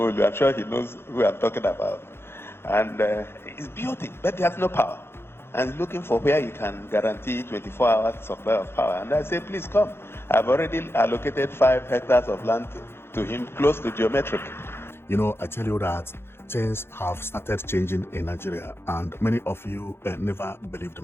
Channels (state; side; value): late; right; 0.11 ms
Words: I'm sure he knows who I'm talking about. And he's built it, but he has no power. And looking for where you can guarantee 24 hours supply of power. And I say, please come. I've already allocated 5 hectares of land to him close to geometric. You know, I tell you that things have started changing in Nigeria, and many of you never believed